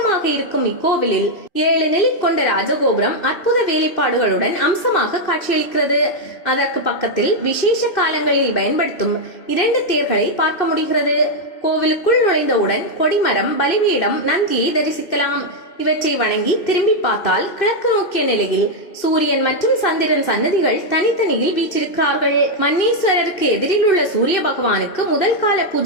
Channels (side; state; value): right; late; 2.7 ms